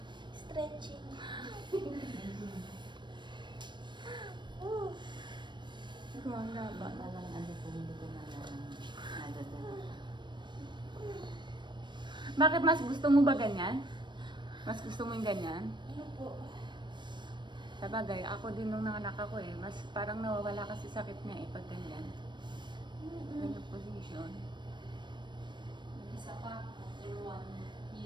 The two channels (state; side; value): late; left; 0.22 ms